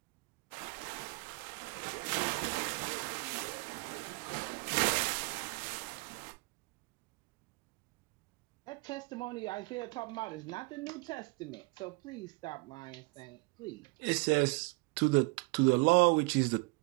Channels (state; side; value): quieter; left; 28.1 dB